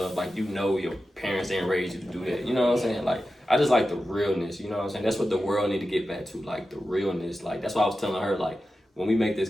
Like, your parents didn't raise you to do that. You know what I'm saying? Like, I just like the realness. You know what I'm saying? That's what the world need to get back to. Like, the realness. Like, that's why I was telling her, like, when we make this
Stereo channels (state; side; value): normal; both; correlation 0.92